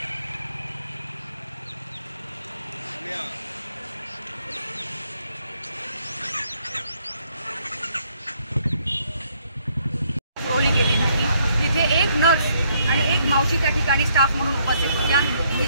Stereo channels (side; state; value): both; inverted; correlation -0.69